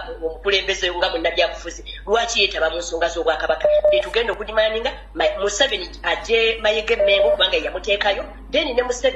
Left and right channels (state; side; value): identical; both; correlation 1.00